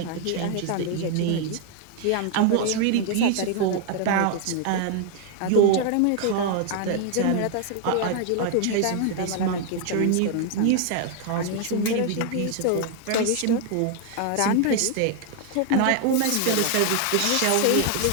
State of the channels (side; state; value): both; different; correlation 0.00